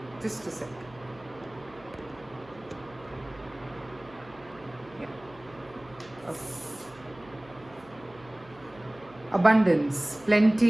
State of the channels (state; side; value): noise; right; hum, 23 dB below the sound